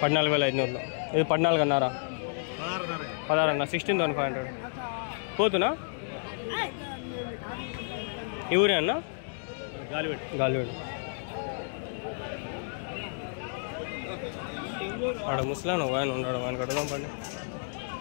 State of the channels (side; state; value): right; silent; digital silence